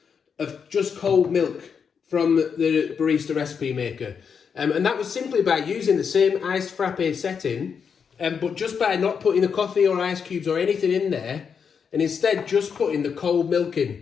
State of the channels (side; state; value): right; quieter; 6.5 dB